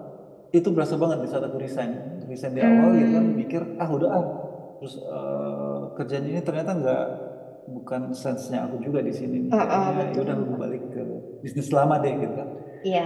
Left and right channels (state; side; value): identical; both; correlation 1.00